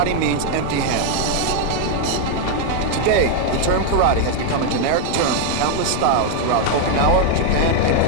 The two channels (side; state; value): both; different; correlation 0.01